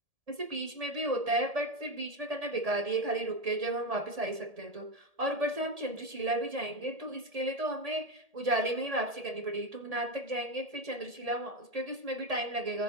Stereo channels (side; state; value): left; late; 1.7 ms